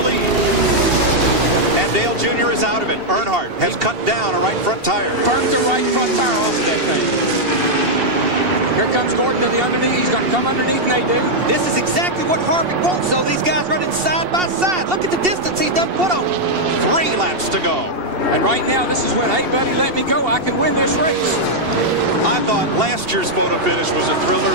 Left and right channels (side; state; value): left; late; 2.7 ms